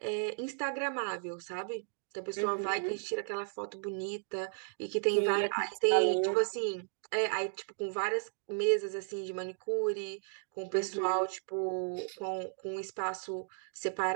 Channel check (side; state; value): left; silent; digital silence